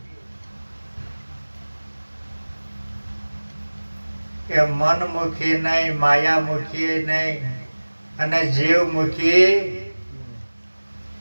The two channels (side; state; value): both; inverted; correlation -1.00